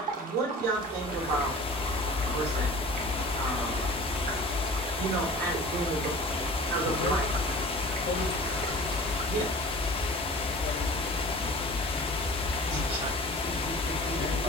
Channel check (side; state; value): both; normal; correlation 0.41